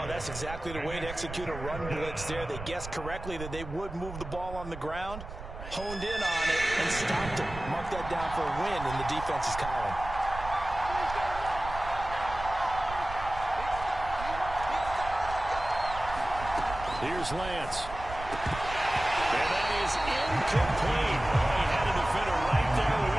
that's exactly the way to execute a run blitz there. They guessed correctly that they would move the ball on the ground, honed in on it, and stopped it. Mark that down for a win in the defense's column. Here's Lance. And that is incomplete. Oh, he had a defender right there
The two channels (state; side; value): noise; right; rumble, 11 dB below the sound